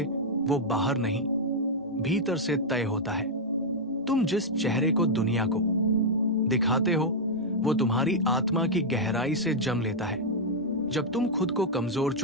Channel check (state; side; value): normal; both; correlation -0.04